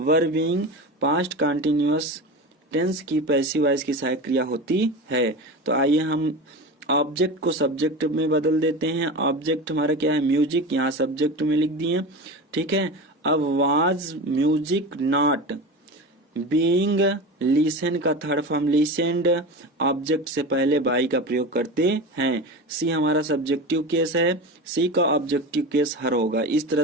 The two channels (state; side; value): normal; both; correlation 0.27